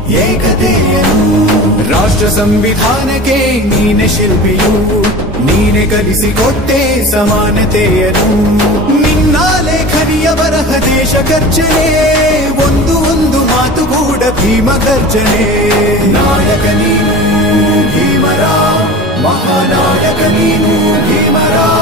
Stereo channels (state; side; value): normal; both; correlation 0.35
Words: ಏಕತೆಯನು ರಾಷ್ಟ್ರ ಸಂವಿಧಾನಕ್ಕೆ ನೀನೆ ಶಿಲ್ಪಿಯು ನೀನೆ ಕಲಿಸಿಕೊಟ್ಟೆ ಸಮಾನತೆಯನು ನಿನ್ನ ಲೇಖನಿಯ ಬರಹ ದೇಶ ಗರ್ಜನೆ ಒಂದು ಮಾತುಗೂಡ ಭೀಮ ಗರ್ಜನೆ ನಾಯಕ ನೀನು ಭೀಮರ ಮಹಾನಾಯಕ ನೀನು ಭೀಮರ